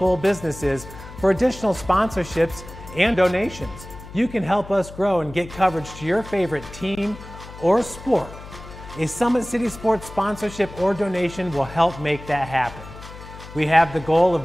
businesses for additional sponsorships and donations. You can help us grow and get coverage to your favorite team or sport. A Summit City Sports sponsorship or donation will help make that happen. We have the goal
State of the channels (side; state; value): left; noise; hum, 15 dB below the sound